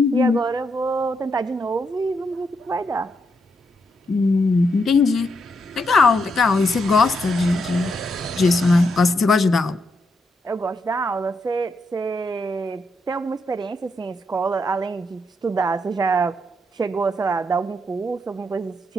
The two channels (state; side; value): normal; both; correlation 0.80